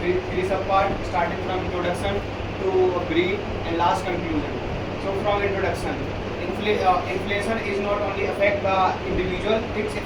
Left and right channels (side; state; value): both; identical; correlation 1.00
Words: subparts, starting from introduction to brief and last conclusion. So from introduction, inflation is not only affect the individual, it